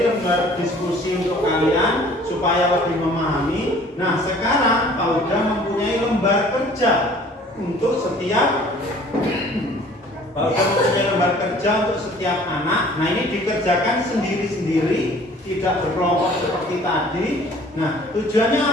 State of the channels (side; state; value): both; normal; correlation 0.52